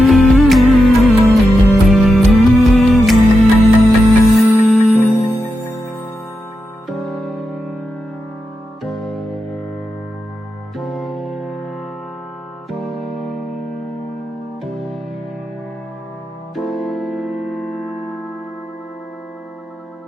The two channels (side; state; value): both; normal; correlation 0.88